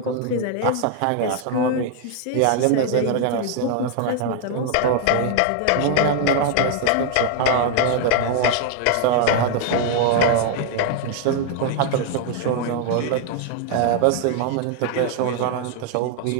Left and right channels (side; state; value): both; different; correlation 0.00